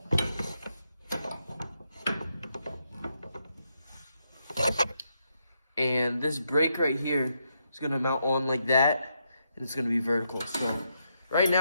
And this brake right here is gonna mount on like that, and it's gonna be vertical. So right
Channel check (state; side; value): inverted; both; correlation -0.80